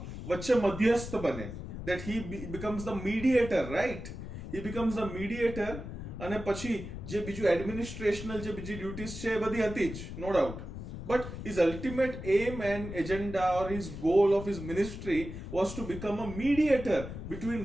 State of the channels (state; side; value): noise; left; rumble, 9 dB below the sound